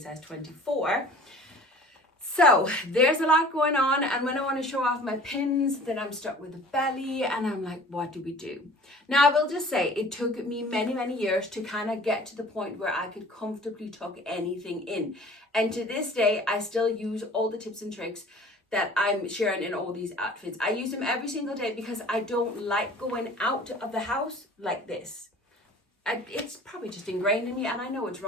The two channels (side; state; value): both; normal; correlation 0.46